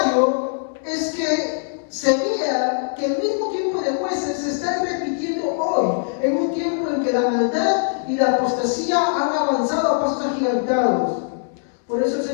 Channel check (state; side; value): silent; right; 65 dB below the other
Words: es que se vea que el mismo tiempo de jueces se está repitiendo hoy, en un tiempo en que la maldad y la apostasía han avanzado a pasos agigantados? Por eso el